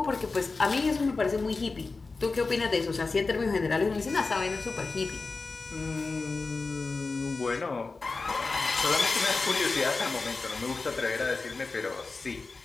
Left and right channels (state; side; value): quieter; right; 3.9 dB